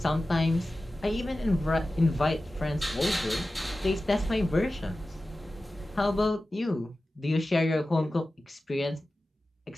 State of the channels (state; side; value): normal; both; correlation 0.95